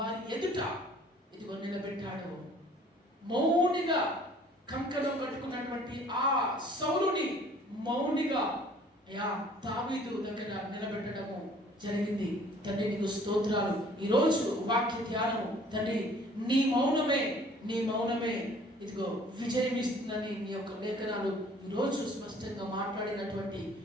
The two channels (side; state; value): both; normal; correlation 0.54